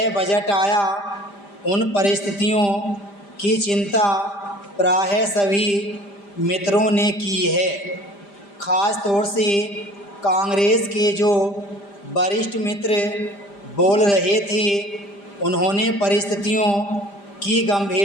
बजट आया, उन परिस्थितियों की चिंता प्रायः सभी मित्रों ने की है। ख़ास तौर से कांग्रेस के जो वरिष्ठ मित्र बोल रहे थे, उन्होंने परिस्थितियों की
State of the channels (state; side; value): late; right; 5.0 ms